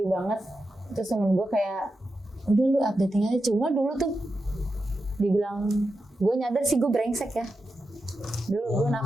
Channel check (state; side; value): normal; both; correlation 0.89